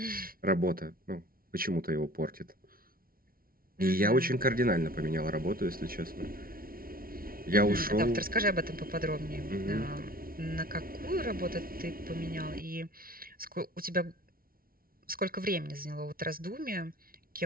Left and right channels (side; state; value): left; late; 0.43 ms